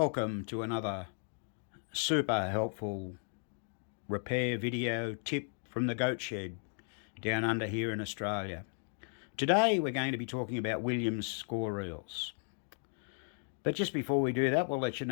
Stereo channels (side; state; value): right; silent; 54 dB below the other